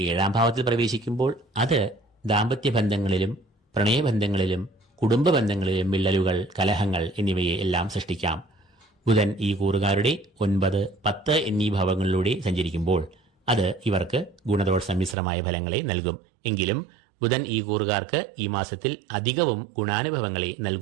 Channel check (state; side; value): drops out; left; at 15.2 s